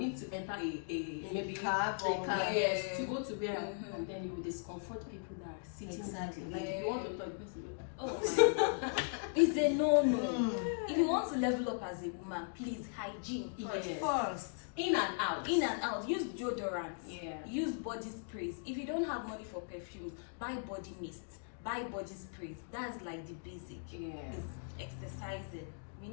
to enter a maybe cab a or- cab, Yeah. yes, to go to where, Mhm. and then you will discomfort people that are sitting. Exactly. Like if Yeah. you want to talk, you have to go. Oh my. It's a no-no. Mm. If you want to level up as a woman, please hygiene first. Yes. First. In and out. In and out. Use deodorant. Yeah. Use body sprays. If you don't have money for perfumes, buy body mist. Buy body sprays. That's like the basic. Yeah. It's exercising. We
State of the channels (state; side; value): silent; right; digital silence